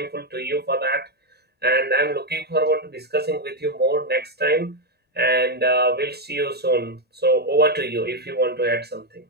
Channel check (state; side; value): normal; both; correlation 0.04